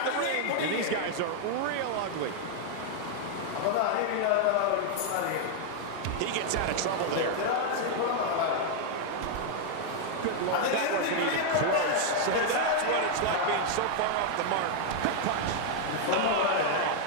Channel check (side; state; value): both; different; correlation 0.00